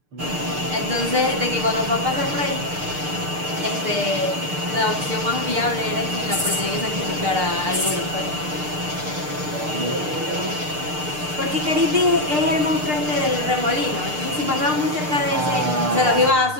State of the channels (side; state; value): left; late; 6.7 ms